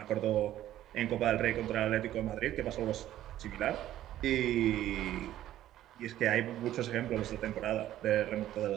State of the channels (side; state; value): left; quieter; 13.0 dB